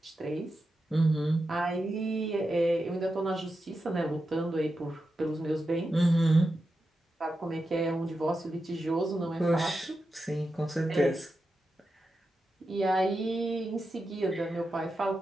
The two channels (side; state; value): both; normal; correlation 0.89